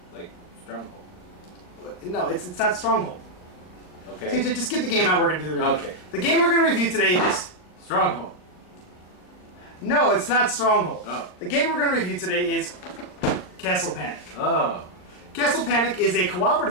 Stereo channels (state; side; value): late; right; 39 ms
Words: Like Stronghold. No, it's not Stronghold. Okay. TJ, just get the game out. We're going to do the review. Okay. The game we're going to review today is... Stronghold. No, it's not Stronghold. Oh. The game we're going to review today is Castle Panic. Oh. Castle Panic is a